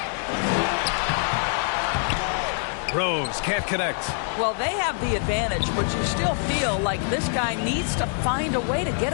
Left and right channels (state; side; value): silent; right; 57 dB below the other